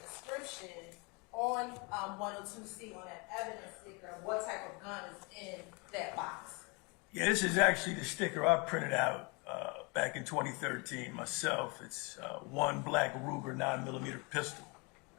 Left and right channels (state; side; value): quieter; right; 29.8 dB